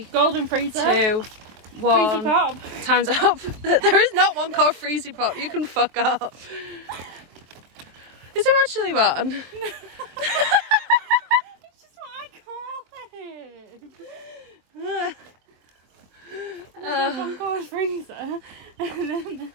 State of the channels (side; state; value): left; late; 23 ms